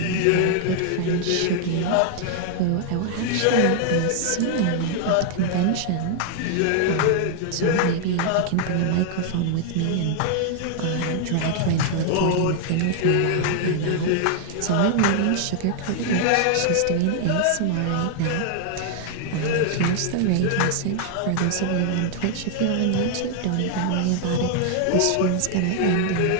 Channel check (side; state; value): both; different; correlation 0.00